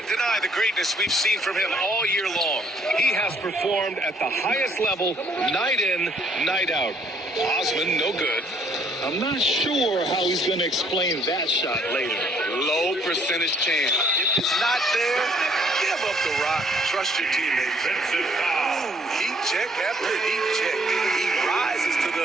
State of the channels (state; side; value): normal; both; correlation 0.64